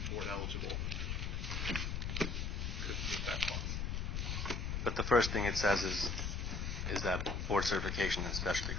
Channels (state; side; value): noise; left; rumble, 1 dB below the sound